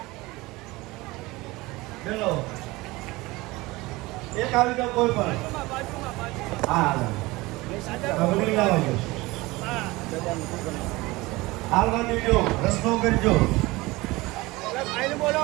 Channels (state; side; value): quieter; left; 21.3 dB